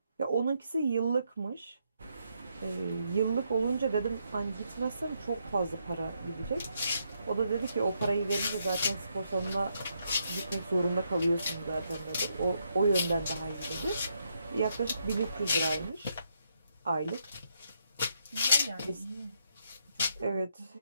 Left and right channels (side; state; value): both; inverted; correlation -0.77